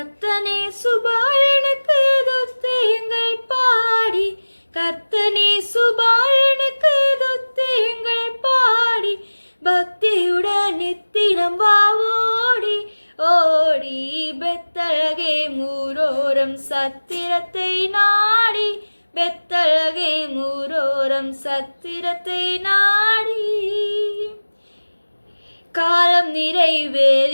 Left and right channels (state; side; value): inverted; both; correlation -1.00